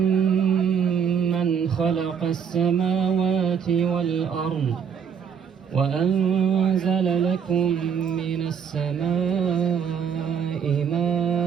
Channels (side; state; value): left; quieter; 7.4 dB